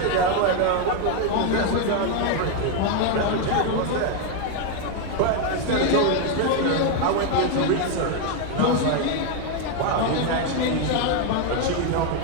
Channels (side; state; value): both; different; correlation 0.01